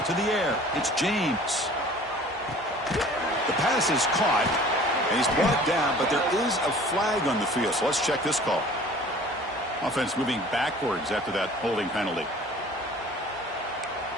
To the air. It's James. The pass is caught, and he's brought down, but there is a flag on the field. So let's check this call. Offense moving backwards after that holding penalty.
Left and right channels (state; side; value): normal; both; correlation 0.47